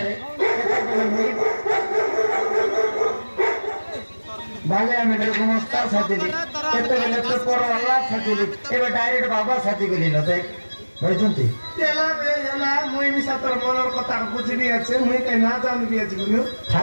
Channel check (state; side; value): inverted; both; correlation -1.00